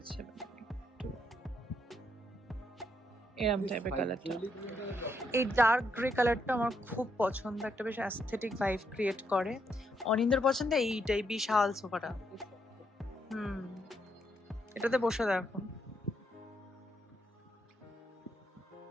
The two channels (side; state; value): both; normal; correlation 0.77